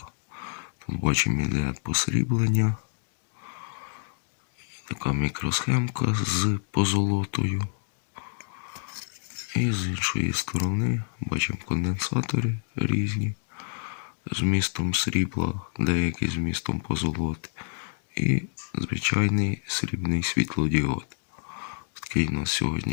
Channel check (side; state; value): right; silent; digital silence